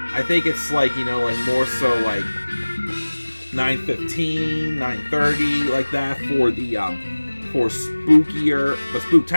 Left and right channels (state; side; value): inverted; both; correlation -1.00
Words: I think it's like, you know, like more so like 9:15, 9:30, like that for the for spookier, but